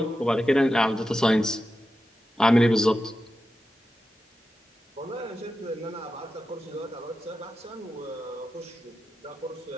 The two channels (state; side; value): normal; both; correlation 0.91